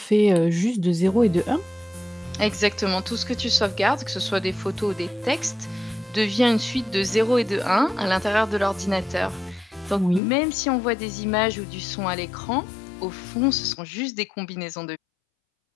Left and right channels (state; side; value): drops out; right; at 10.2 s